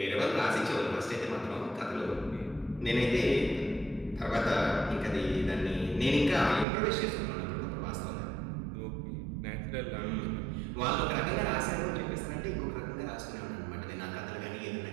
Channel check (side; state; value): left; drops out; at 6.7 s